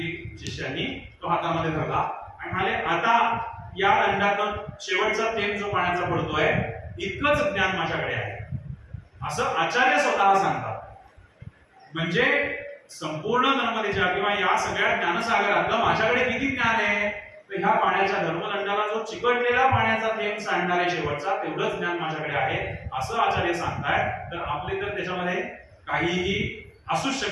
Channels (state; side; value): identical; both; correlation 1.00